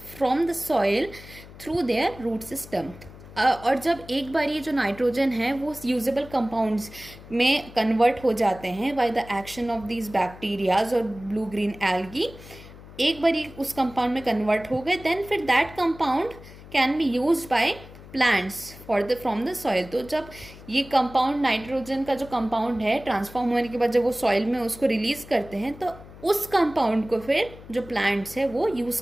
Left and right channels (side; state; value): left; noise; hum, 18 dB below the sound